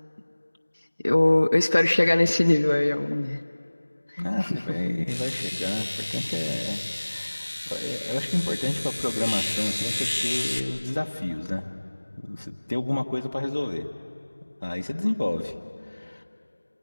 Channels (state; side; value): inverted; both; correlation -1.00